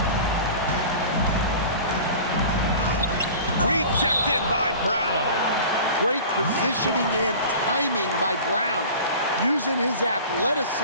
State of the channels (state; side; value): inverted; both; correlation -0.39